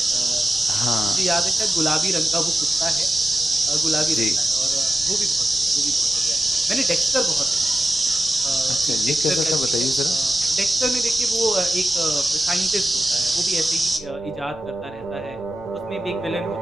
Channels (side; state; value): left; noise; rumble, 22 dB below the sound